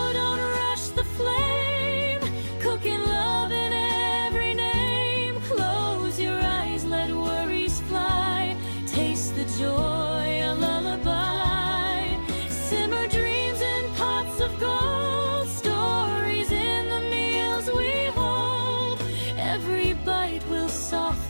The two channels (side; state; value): both; inverted; correlation -1.00